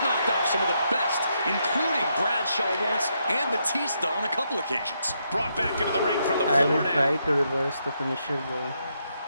knocked off some of the best, including Bradshaw once and Batista on a couple occasions. Brought back into the ring from the I floor will try to reverse the finisher though.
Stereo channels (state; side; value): inverted; both; correlation -0.79